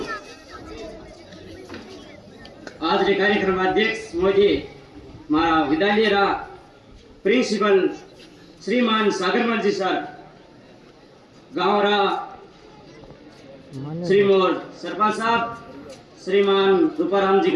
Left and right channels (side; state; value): both; identical; correlation 1.00